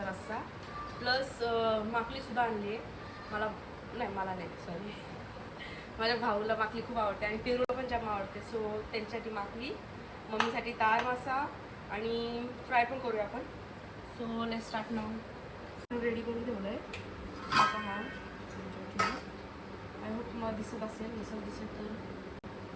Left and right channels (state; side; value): identical; both; correlation 1.00